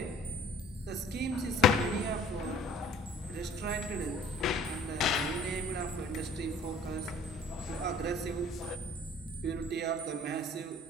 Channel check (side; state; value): both; normal; correlation 0.53